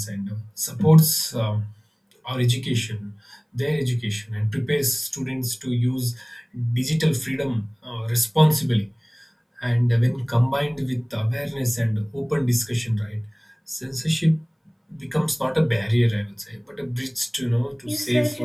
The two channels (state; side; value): identical; both; correlation 1.00